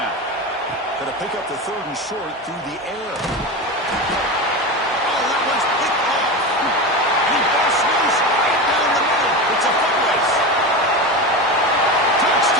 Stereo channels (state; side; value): normal; both; correlation 0.23